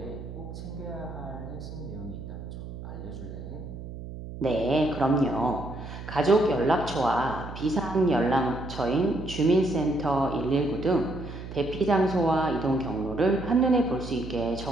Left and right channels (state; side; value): noise; right; hum, 10 dB below the sound